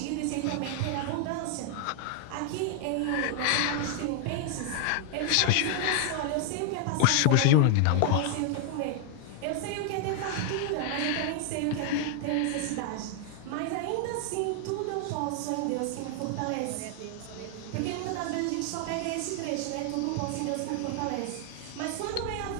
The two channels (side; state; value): both; different; correlation 0.00